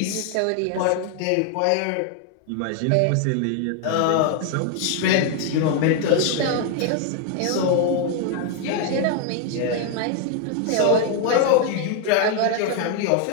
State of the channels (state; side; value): different; both; correlation 0.01